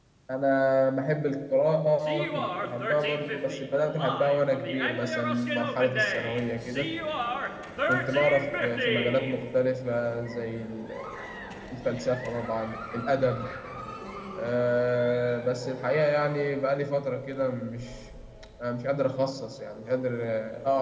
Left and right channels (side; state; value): both; identical; correlation 1.00